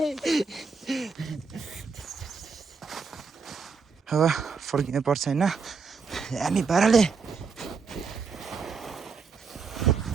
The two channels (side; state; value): left; quieter; 5.0 dB